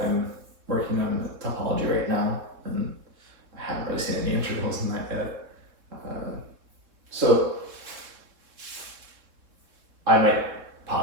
I'm working on topology right now, and I haven't really seen any integrals in that yet. So I might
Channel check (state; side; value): late; left; 3.6 ms